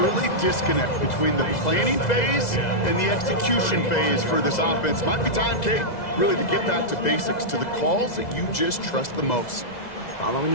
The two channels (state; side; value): late; right; 2.0 ms